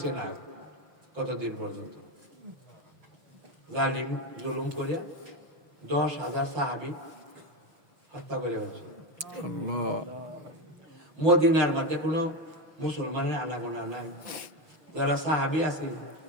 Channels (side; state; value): left; late; 6.3 ms